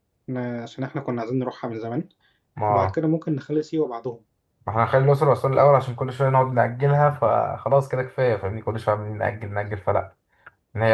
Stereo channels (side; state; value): both; identical; correlation 1.00